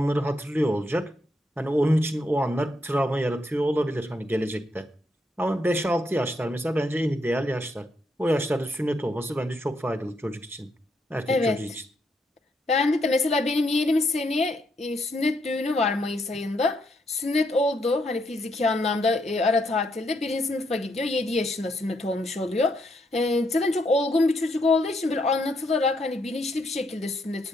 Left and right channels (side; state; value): both; normal; correlation 0.77